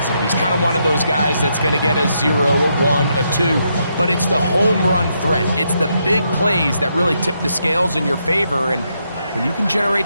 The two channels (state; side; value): inverted; both; correlation -0.79